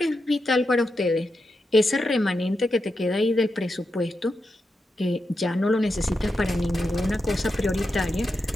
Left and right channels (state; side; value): normal; both; correlation 0.87